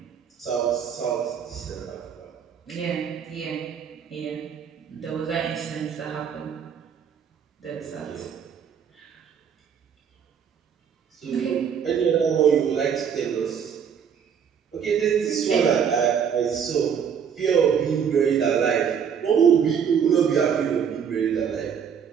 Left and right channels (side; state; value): left; quieter; 7.5 dB